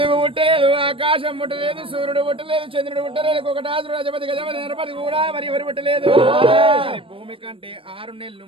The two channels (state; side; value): late; left; 0.26 ms